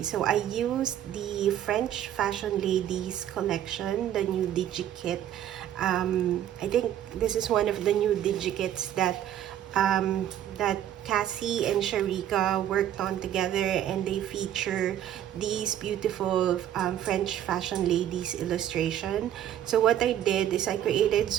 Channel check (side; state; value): left; quieter; 11.1 dB